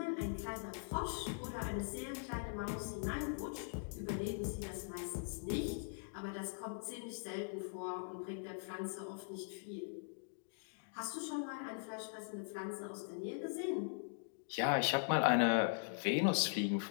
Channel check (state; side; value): silent; right; digital silence